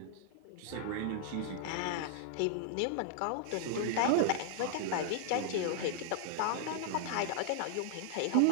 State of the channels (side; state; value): both; different; correlation -0.01